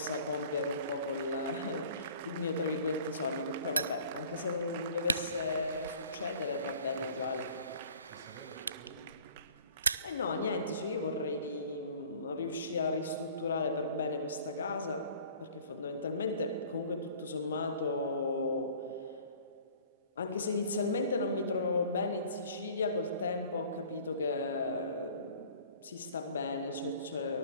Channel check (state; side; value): inverted; both; correlation -0.50